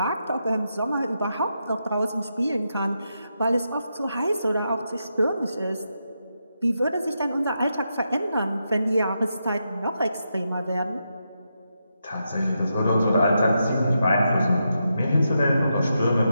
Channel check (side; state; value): both; inverted; correlation -0.85